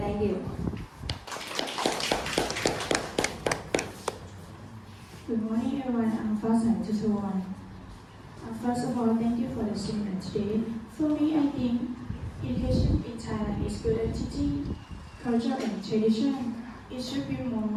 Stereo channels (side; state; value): both; identical; correlation 1.00